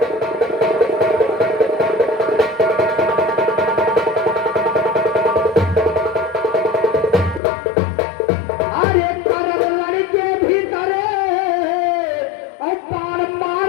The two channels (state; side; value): drops out; right; at 7.4 s